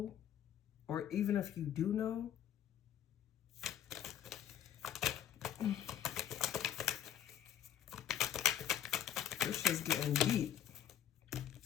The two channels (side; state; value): right; quieter; 10.3 dB